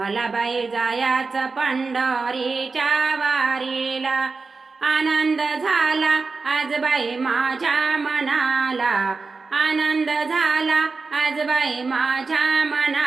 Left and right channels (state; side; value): quieter; left; 4.2 dB